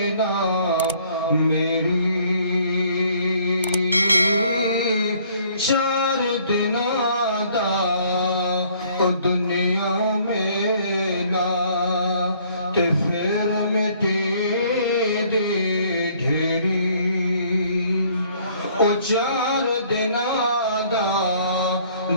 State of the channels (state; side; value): inverted; both; correlation -0.60